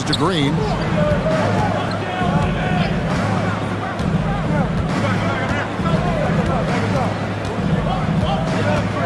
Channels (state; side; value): identical; both; correlation 1.00